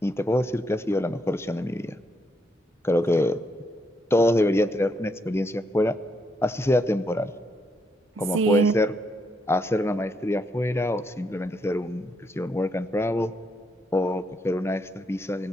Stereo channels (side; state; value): both; normal; correlation 0.77